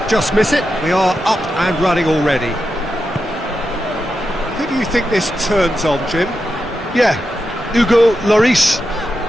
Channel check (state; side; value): normal; both; correlation 0.88